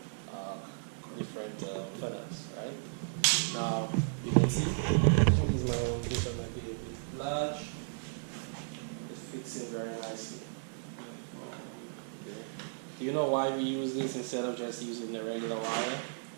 funnels, right? Now you can see this one might be a bit large. It fits in very nicely. Okay. Do you know why we use this instead of just using the regular wire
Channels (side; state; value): left; silent; digital silence